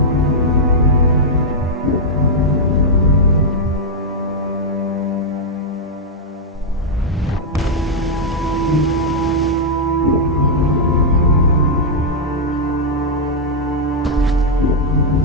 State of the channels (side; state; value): both; normal; correlation -0.05